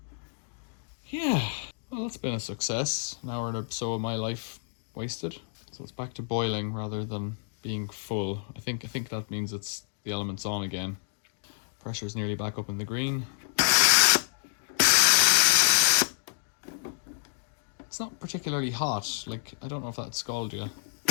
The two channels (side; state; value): right; silent; digital silence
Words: Yeah, well, that's been a success. An hour or so of my life wasted. So it's back to boiling rather than being full. I think that means it's the element's on again. Pressure's nearly back up in the green. It's not particularly hot. Like, I don't know if that scalded you.